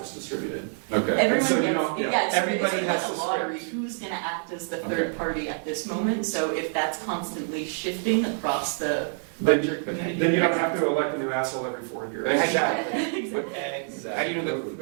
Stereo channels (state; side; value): silent; left; 61 dB below the other